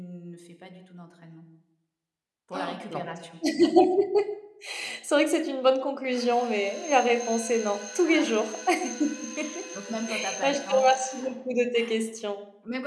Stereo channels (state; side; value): identical; both; correlation 1.00